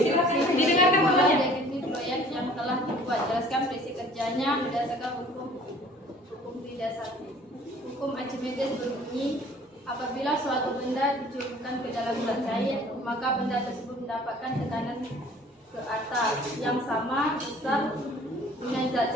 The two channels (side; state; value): both; normal; correlation 0.52